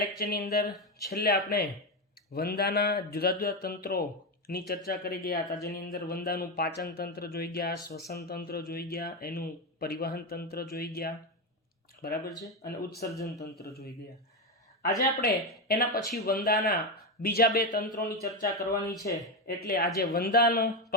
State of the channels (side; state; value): both; normal; correlation 0.11